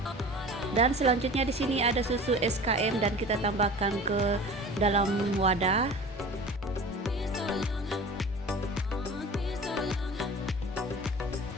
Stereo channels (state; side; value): normal; both; correlation 0.39